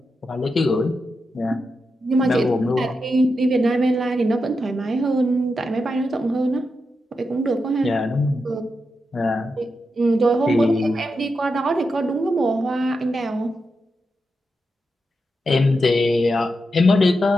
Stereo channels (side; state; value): both; normal; correlation 0.87